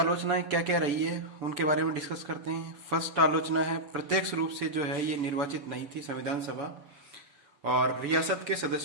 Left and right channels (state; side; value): late; left; 6.9 ms